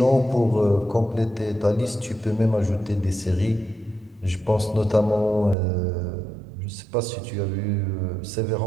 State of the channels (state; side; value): drops out; left; at 5.6 s